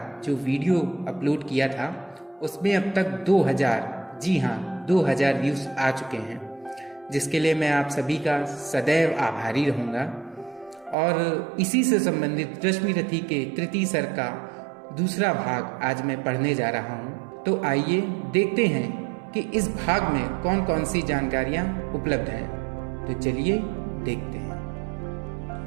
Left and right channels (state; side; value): drops out; left; at 11.0 s